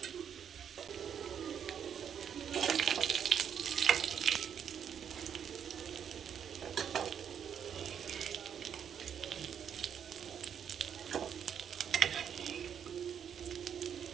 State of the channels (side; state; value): left; quieter; 8.3 dB